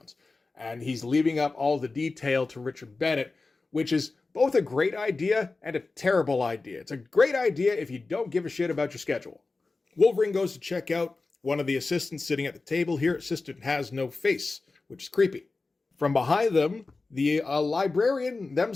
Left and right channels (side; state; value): right; quieter; 3.7 dB